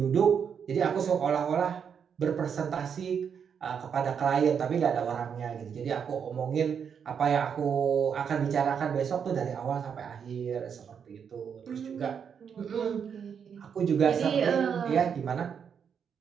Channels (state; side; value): quieter; left; 7.2 dB